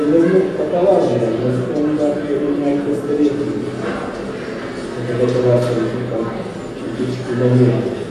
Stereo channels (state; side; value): identical; both; correlation 1.00